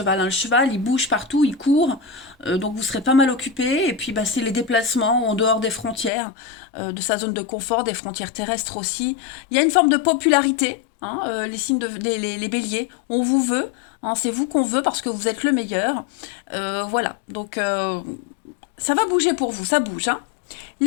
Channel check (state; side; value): drops out; right; at 6.1 s